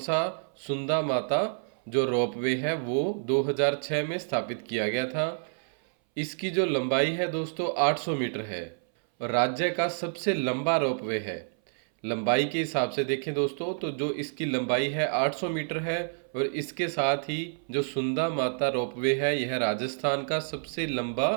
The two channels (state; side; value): silent; left; 59 dB below the other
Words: सुंदा माता जो रोपवे है वो 2006 में स्थापित किया गया था। इसकी जो लंबाई है दोस्तों 800 मीटर है और राज्य का सबसे लंबा रोपवे है। लंबाई के हिसाब से देखें दोस्तों तो जो इसकी लंबाई है 800 मीटर है और इसके साथ ही जो सुंदा माता रोपवे है यह राजस्थान का सबसे